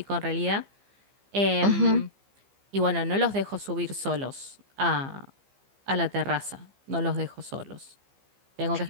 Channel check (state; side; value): late; left; 15 ms